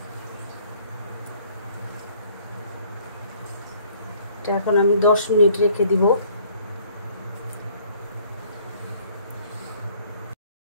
এখন আমি 10 মিনিট রেখে দিব।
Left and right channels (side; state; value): both; inverted; correlation -0.59